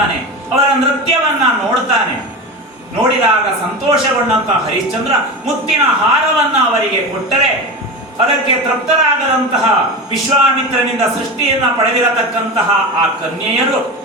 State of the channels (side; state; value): both; normal; correlation 0.25